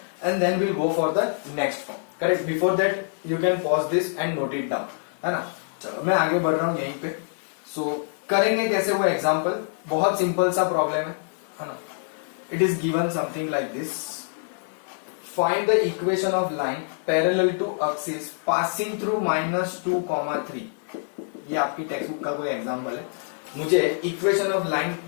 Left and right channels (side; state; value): right; silent; digital silence